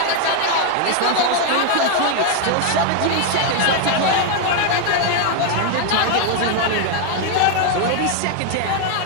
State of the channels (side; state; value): both; different; correlation 0.01